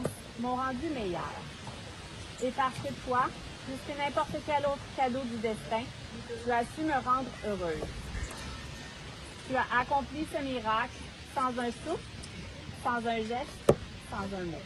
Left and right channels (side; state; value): both; identical; correlation 1.00